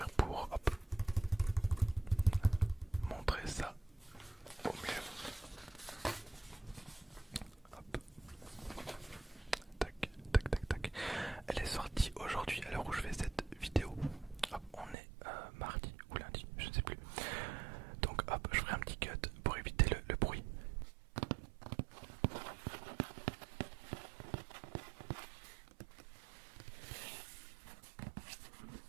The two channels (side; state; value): left; drops out; at 15.0 s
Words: pour montrer ça au mieux. Hop. Tac, tac, tac, tac. Elle est sortie aujourd'hui à l'heure où je fais cette vidéo. Hop, on est mardi ou lundi, je ne sais plus. Donc hop, je ferai un petit cut pour éviter le bruit.